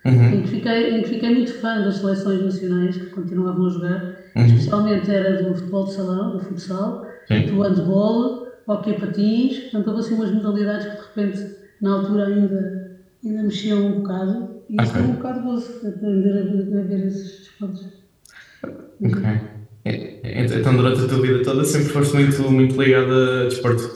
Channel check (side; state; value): both; identical; correlation 1.00